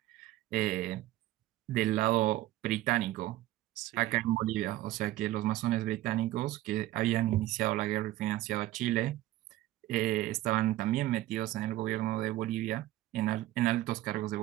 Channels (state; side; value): quieter; left; 15.7 dB